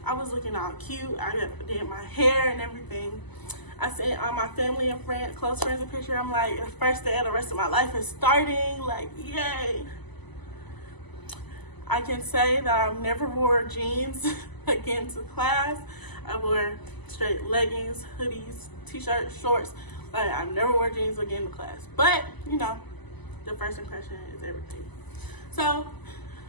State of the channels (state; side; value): late; right; 1.0 ms